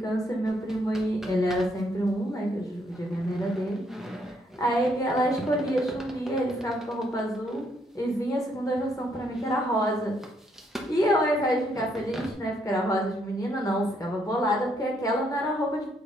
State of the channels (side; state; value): both; normal; correlation 0.72